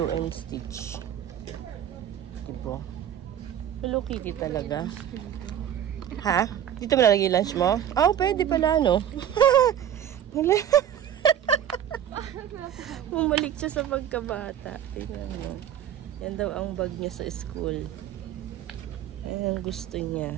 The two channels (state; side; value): quieter; left; 10.1 dB